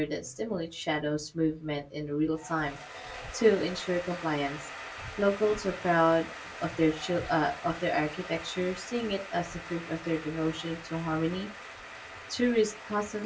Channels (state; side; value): identical; both; correlation 1.00